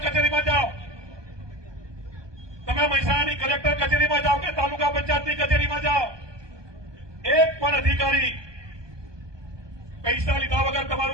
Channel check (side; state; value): left; late; 1.2 ms